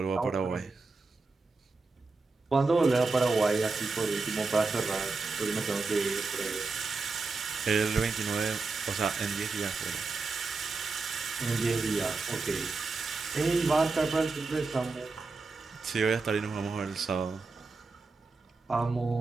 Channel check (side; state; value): left; quieter; 4.0 dB